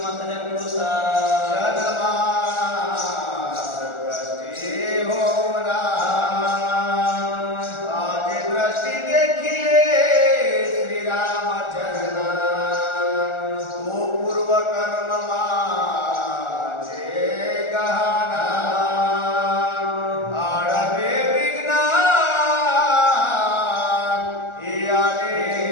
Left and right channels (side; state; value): right; late; 1.4 ms